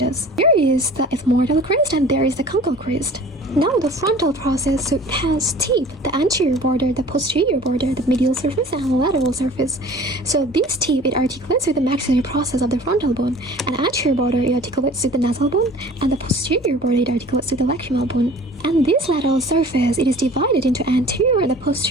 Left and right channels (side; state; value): both; normal; correlation 0.46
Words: There is the ethmoidal crest, and there is the conchal crest. Now the frontal process, so it has teeth, the anterior border, the posterior border, the medial surface, and the lateral surface. So this teeth, it articulates with the maxillary process of the frontal bone, and the anterior border, it articulates with the nasal bone, and the posterior border, it articulates with the lacrimal bone. And this lateral surface, it is divided into anterior and the